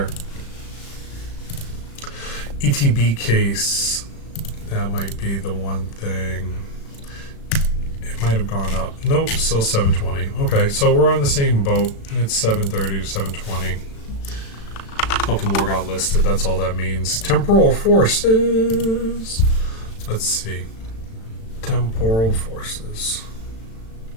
ETB case. That might be the one thing. Might have gone up. Nope, still $720. Okay, so we're on the same boat. It's $730 to $720. A couple more got listed. That's all that means. Temporal Forces. Let's see. Temporal Forces.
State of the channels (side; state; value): right; late; 36 ms